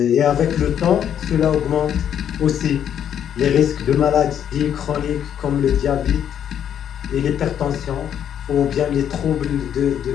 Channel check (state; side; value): quieter; right; 9.4 dB